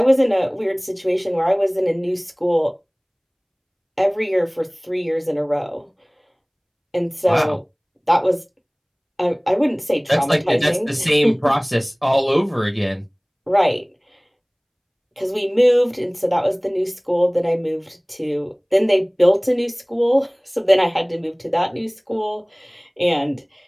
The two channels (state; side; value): identical; both; correlation 1.00